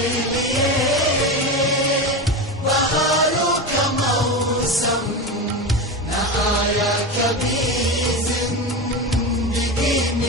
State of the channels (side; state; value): both; normal; correlation 0.21